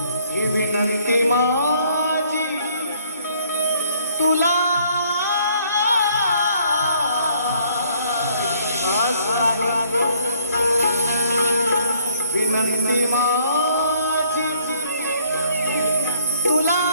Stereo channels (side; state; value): both; inverted; correlation -0.62